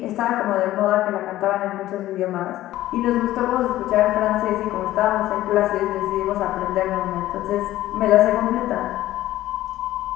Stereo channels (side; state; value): right; quieter; 14.9 dB